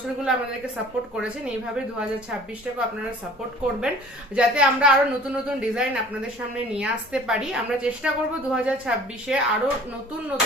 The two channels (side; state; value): both; normal; correlation 0.48